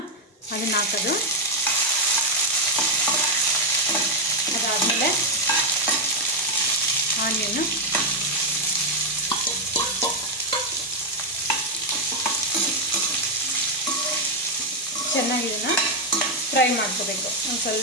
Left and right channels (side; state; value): both; normal; correlation 0.03